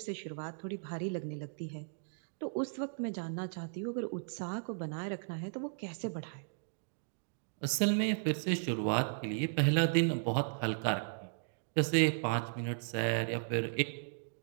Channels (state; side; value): silent; left; digital silence